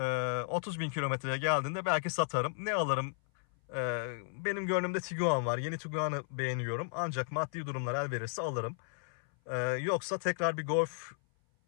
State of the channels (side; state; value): right; silent; 55 dB below the other